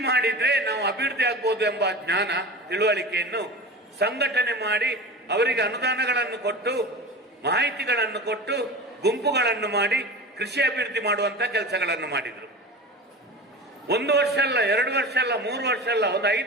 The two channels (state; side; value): normal; both; correlation 0.31